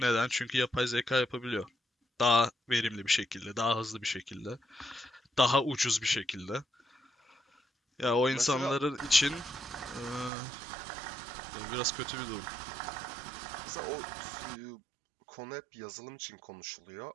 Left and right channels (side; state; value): left; drops out; at 10.3 s